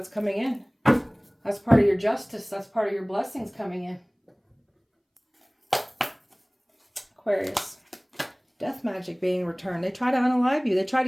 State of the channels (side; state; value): both; identical; correlation 1.00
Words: coming in. That's part of your justice. That's part of your blessings coming in. Aquarius. Death magic being returned. They try to unalive you. They try